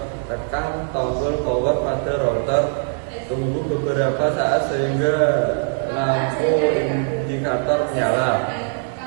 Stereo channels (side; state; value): left; silent; digital silence